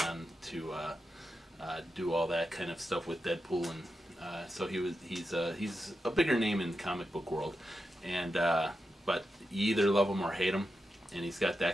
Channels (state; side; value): normal; both; correlation 0.89